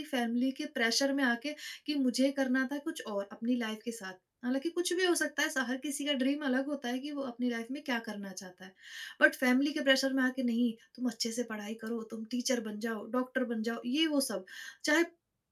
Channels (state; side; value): identical; both; correlation 1.00